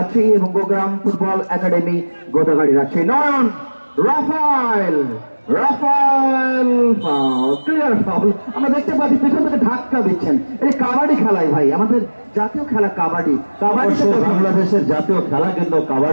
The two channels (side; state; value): both; inverted; correlation -1.00